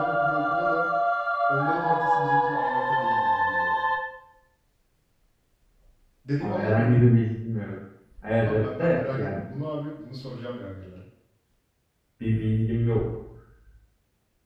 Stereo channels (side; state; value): both; identical; correlation 1.00